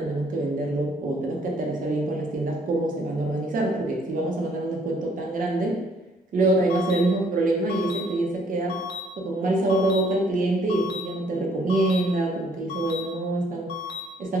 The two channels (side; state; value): both; normal; correlation 0.64